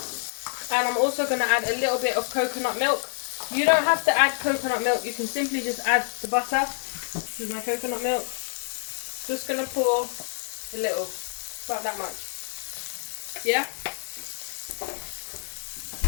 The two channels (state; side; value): silent; right; digital silence